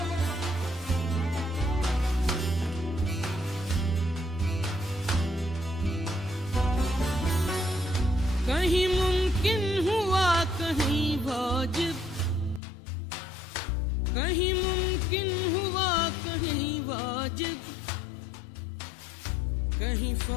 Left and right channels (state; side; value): drops out; right; at 12.6 s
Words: कहीं मुमकिन हुआ कहीं वाजिब, कहीं मुमकिन हुआ कहीं वाजिब, कहीं